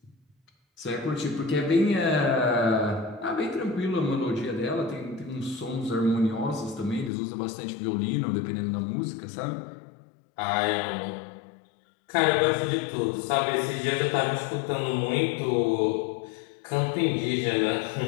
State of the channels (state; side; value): drops out; right; at 7.1 s